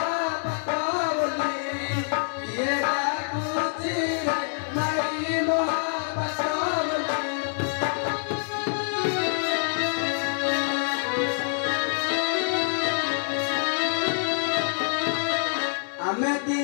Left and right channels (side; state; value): right; silent; 61 dB below the other